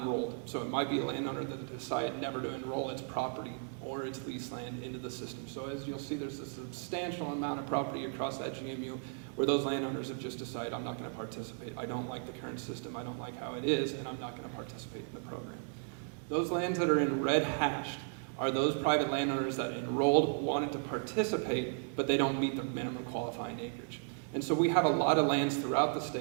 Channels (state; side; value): silent; left; 54 dB below the other